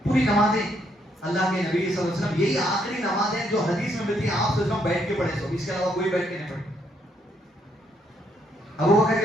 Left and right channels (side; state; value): both; normal; correlation 0.73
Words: پوری نمازیں اللہ کے نبی صلی اللہ علیہ وسلم، یہی آخری نمازیں جو حدیث میں ملتی ہیں، آپ صلی اللہ علیہ وسلم بیٹھ کے پڑھے، سو اس کے علاوہ کوئی بیٹھ کے نہیں پڑھے. ابو بکر کے